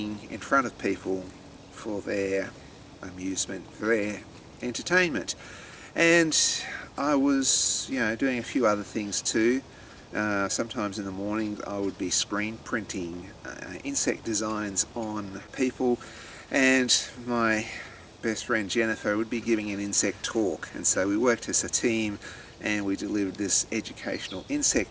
in front of people for their amusement, for their entertainment. And I was, doing a few other things too. Sometimes in the morning I would be screen printing insect designs on people, and my best friend Jennifer would be giving an insect talk, and so we worked as a team and we delivered this educational insect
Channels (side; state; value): both; identical; correlation 1.00